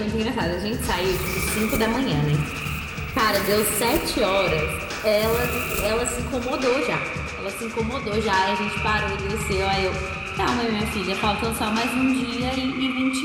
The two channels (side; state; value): both; identical; correlation 1.00